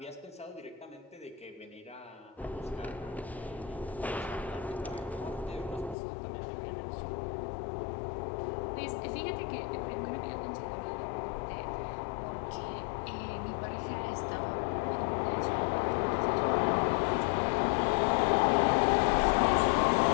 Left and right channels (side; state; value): right; drops out; at 6.0 s